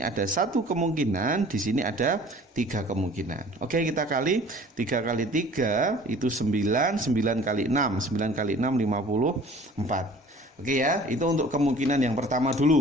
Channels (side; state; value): both; normal; correlation 0.48